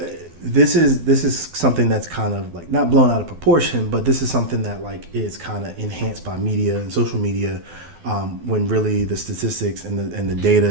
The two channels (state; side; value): late; left; 12 ms